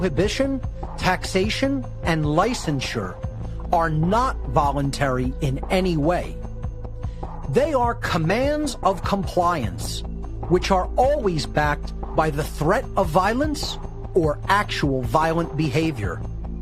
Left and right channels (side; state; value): both; identical; correlation 1.00